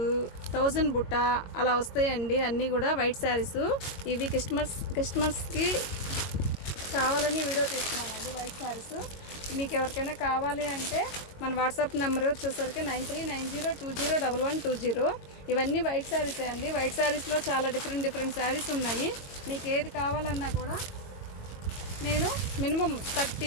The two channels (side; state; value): right; late; 21 ms